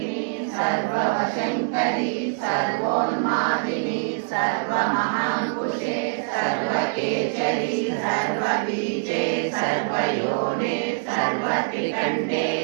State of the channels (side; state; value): left; silent; digital silence